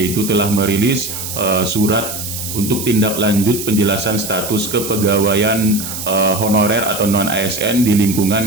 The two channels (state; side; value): noise; right; hiss, 7 dB below the sound